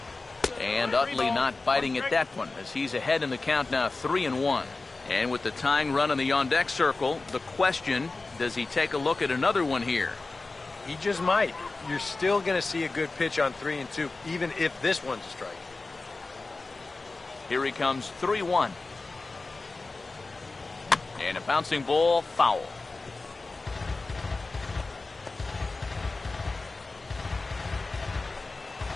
And Utley not biting at that one, as he's ahead in the count now, 3-1. And with the tying run in the on-deck circle, the question, does he take a look at another one here? He just might. You're still going to see a good pitch on 3-2, even if this one's a strike. Here he comes, 3-1. And a bouncing ball, foul.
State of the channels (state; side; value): quieter; right; 3.5 dB